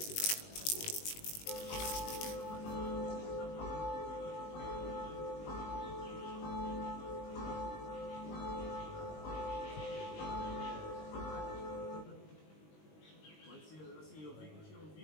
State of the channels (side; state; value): right; late; 19 ms